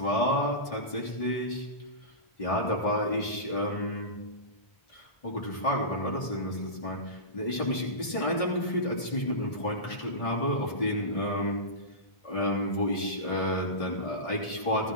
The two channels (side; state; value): right; late; 1.6 ms